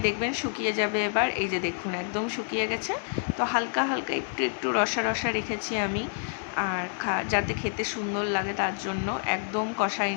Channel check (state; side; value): silent; right; 59 dB below the other